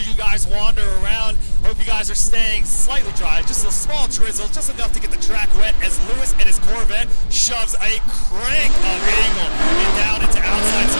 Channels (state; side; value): inverted; both; correlation -1.00